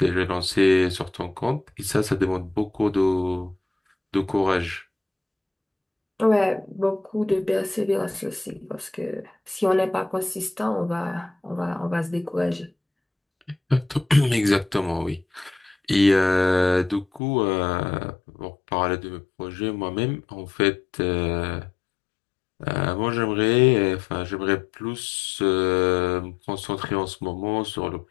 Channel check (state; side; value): drops out; right; at 17.2 s